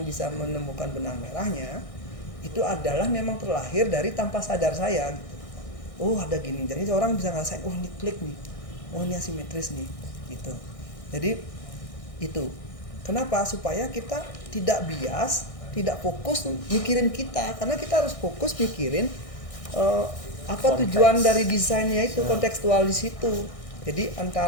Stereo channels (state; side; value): late; right; 1.6 ms